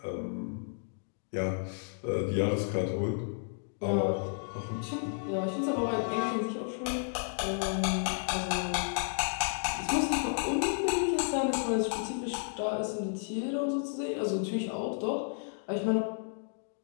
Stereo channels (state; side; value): silent; right; digital silence